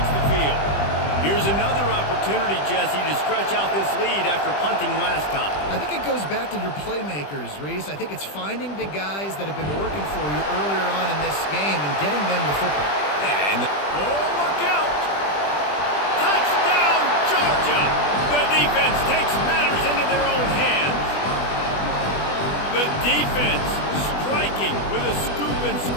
the field. Here's another opportunity, Jesse, to stretch out this lead after punting last time. I think it goes back to your playmakers, Reese. I think it's finding the guys that have been working for you earlier on in this game and getting them the football. And oh, look out! Touchdown, Georgia! The defense takes matters into their own hands. The defense striking with a scoop and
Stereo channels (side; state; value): right; late; 20 ms